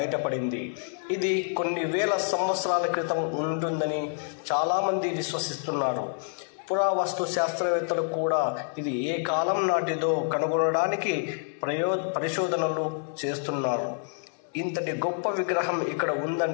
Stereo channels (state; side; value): silent; right; digital silence